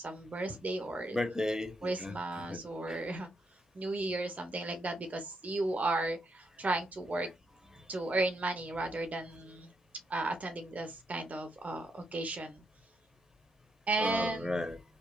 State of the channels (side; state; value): both; normal; correlation 0.79